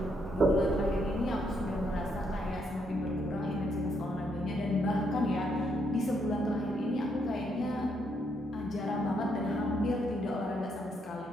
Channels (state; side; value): normal; both; correlation 0.75